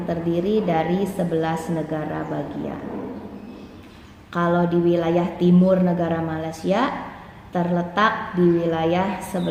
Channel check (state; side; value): identical; both; correlation 1.00